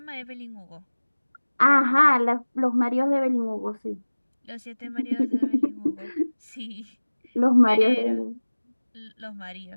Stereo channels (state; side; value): inverted; both; correlation -1.00